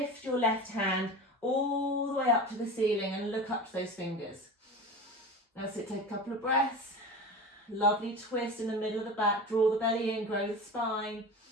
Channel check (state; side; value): normal; both; correlation 0.31